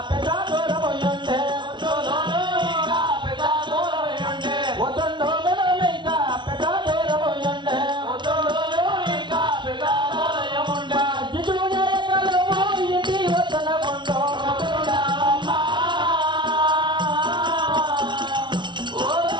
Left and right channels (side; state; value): left; late; 0.23 ms